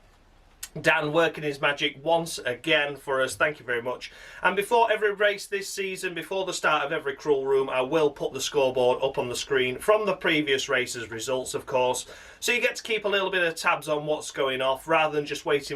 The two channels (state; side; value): identical; both; correlation 1.00